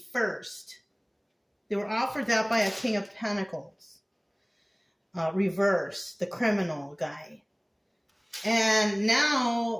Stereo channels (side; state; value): both; identical; correlation 1.00